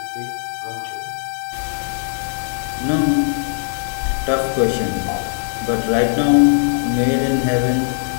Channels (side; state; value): right; silent; digital silence